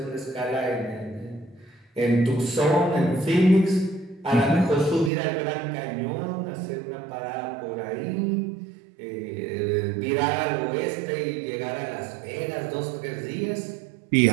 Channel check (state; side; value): drops out; left; at 5.1 s